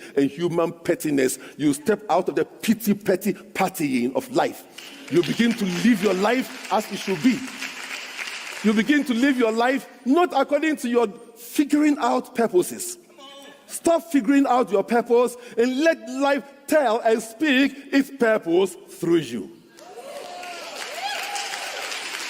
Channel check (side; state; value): both; identical; correlation 1.00